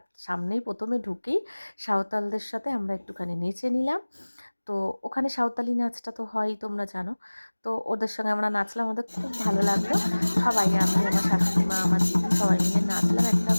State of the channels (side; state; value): both; inverted; correlation -1.00